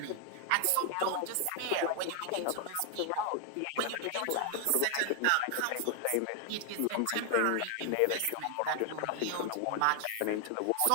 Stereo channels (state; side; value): different; both; correlation 0.00